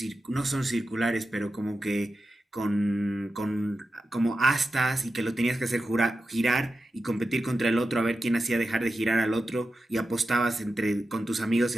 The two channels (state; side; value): normal; both; correlation 0.91